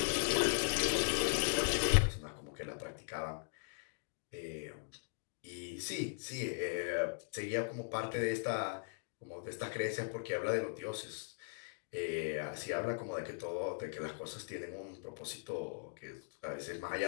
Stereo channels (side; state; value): right; silent; digital silence